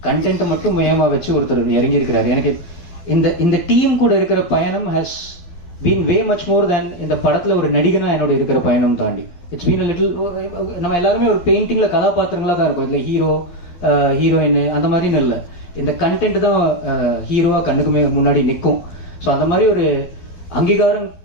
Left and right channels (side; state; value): right; late; 12 ms